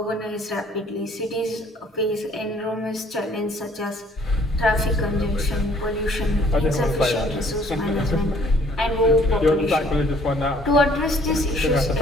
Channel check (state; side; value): normal; both; correlation 0.59